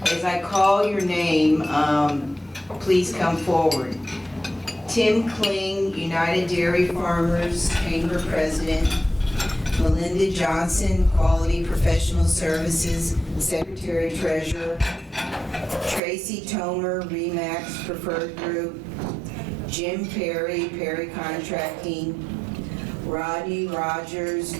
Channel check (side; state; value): left; drops out; at 16.0 s